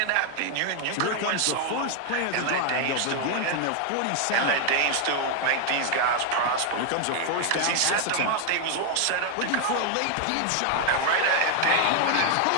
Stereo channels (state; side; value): different; both; correlation 0.00